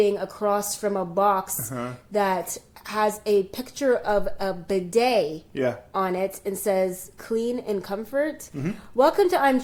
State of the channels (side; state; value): both; identical; correlation 1.00